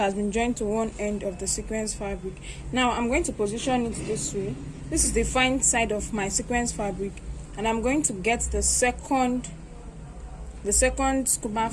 been joined to one end of the sequence fabric. Now I'm going to position it this way. This is the fine side of my sequence fabric, and I'm going to get the second scuba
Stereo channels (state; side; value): identical; both; correlation 1.00